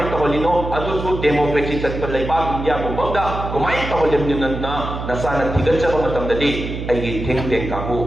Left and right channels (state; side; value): noise; right; hum, 6 dB below the sound